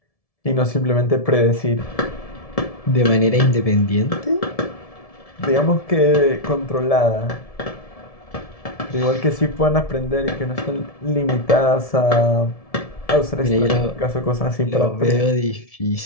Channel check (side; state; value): right; late; 1.7 ms